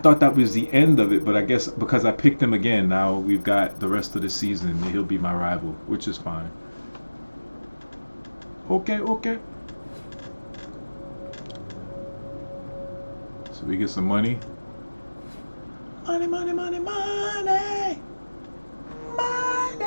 that was the end of it, but I guess because I picked him again, now we've got the rest of the season. He'll be my rival, which is fine. Okay, okay. So we get some money. Money, money, money, money.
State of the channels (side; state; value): both; inverted; correlation -1.00